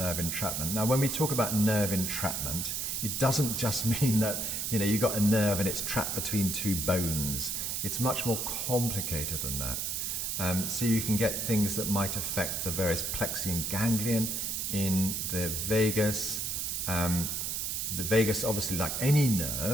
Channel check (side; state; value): right; noise; hiss, 1 dB below the sound